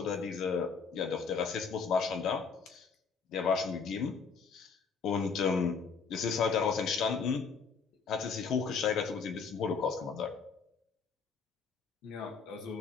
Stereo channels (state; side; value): quieter; right; 5.5 dB